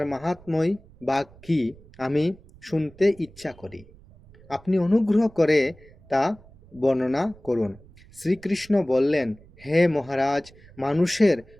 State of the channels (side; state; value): right; noise; rumble, 24 dB below the sound